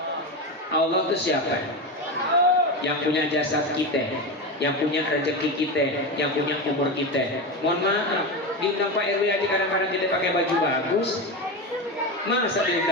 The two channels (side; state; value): both; normal; correlation 0.19